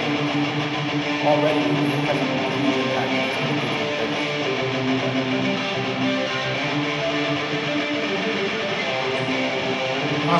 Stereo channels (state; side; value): identical; both; correlation 1.00